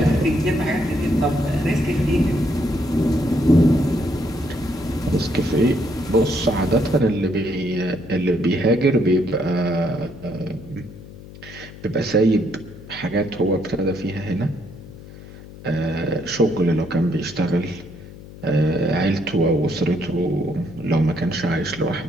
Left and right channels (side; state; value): left; noise; hum, 17 dB below the sound